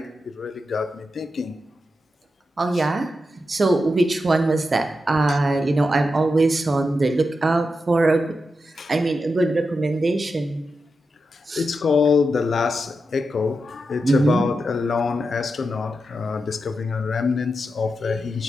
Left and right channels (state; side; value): normal; both; correlation 0.88